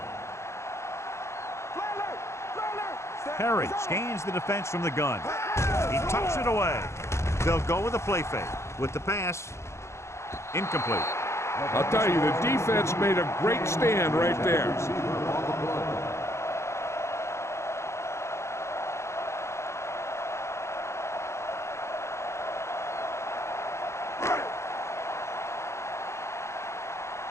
Perry scans the defense from the gun. He tucks it away. They'll go with a play fake. With the pass, incomplete. I'll tell you, the defense made a great stand right there.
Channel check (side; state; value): right; late; 0.13 ms